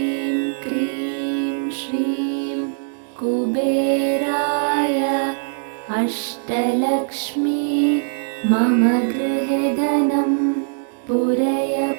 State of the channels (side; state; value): left; silent; digital silence